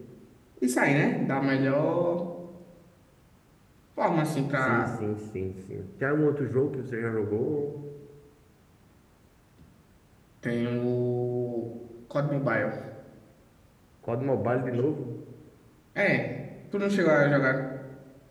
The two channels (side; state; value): both; identical; correlation 1.00